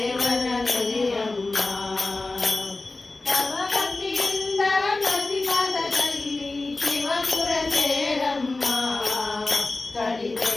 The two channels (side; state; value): right; quieter; 3.3 dB